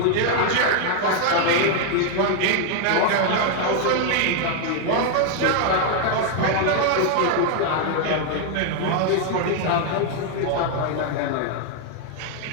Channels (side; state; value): both; different; correlation 0.00